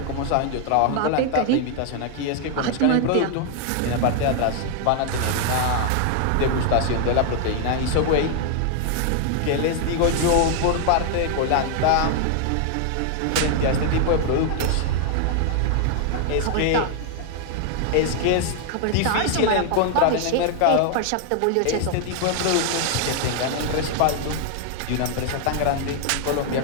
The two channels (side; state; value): both; different; correlation 0.00